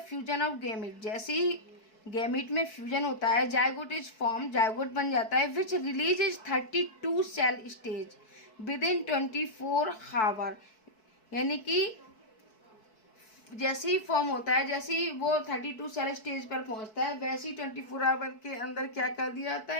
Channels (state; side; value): late; right; 4.6 ms